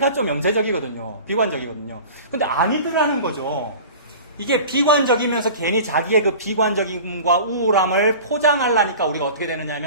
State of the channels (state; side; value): inverted; both; correlation -0.39